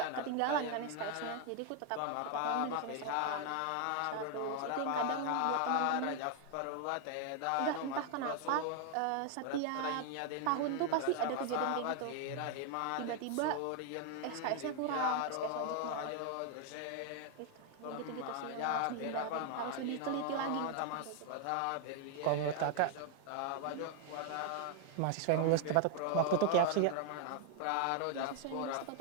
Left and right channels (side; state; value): both; different; correlation 0.00